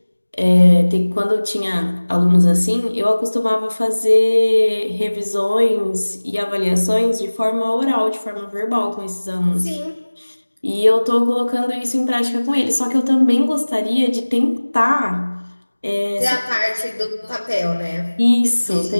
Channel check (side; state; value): both; inverted; correlation -1.00